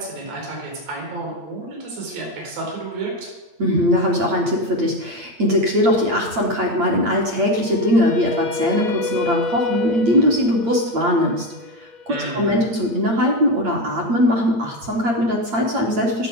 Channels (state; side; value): late; left; 8.7 ms